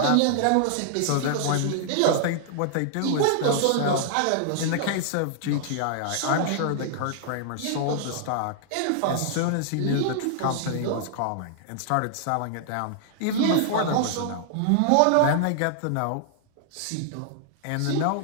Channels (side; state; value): both; different; correlation -0.01